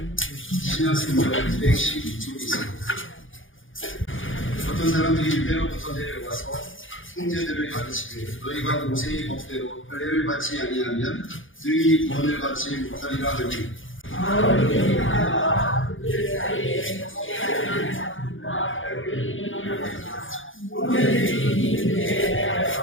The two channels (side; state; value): right; late; 0.58 ms